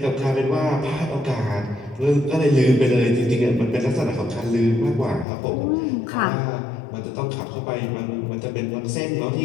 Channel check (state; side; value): drops out; right; at 5.2 s